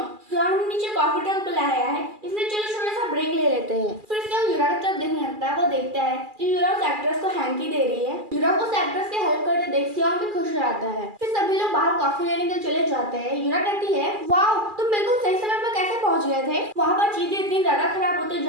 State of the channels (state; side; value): late; left; 2.4 ms